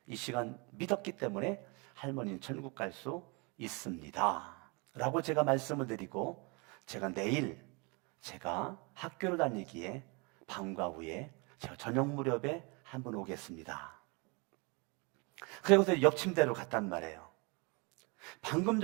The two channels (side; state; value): left; quieter; 30.3 dB